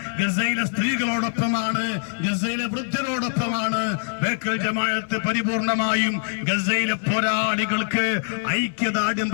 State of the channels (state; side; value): silent; right; digital silence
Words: ഗസയിലെ സ്ത്രീകളോടൊപ്പമാണ്, ഗസയിലെ വൃദ്ധരോടൊപ്പമാണ്. ബേക്കൽ ജമാഅത്ത് പരിപൂർണമായും ഗസയിലെ പോരാളികൾക്ക് ഐക്യദാർഢ്യം